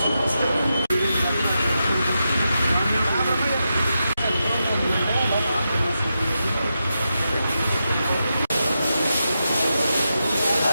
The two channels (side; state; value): both; inverted; correlation -0.88